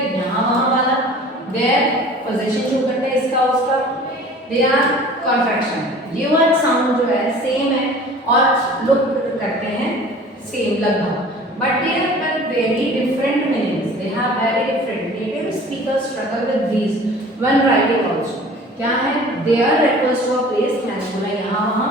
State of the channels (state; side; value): normal; both; correlation 0.45